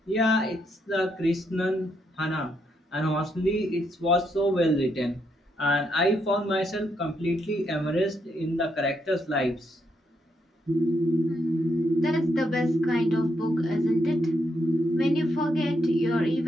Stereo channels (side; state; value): both; normal; correlation 0.78